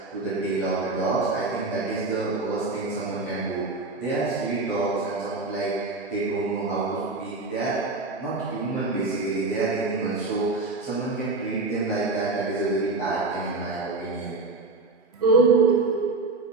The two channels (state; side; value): quieter; left; 3.5 dB